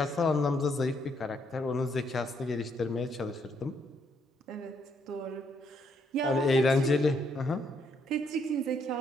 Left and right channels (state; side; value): normal; both; correlation 0.73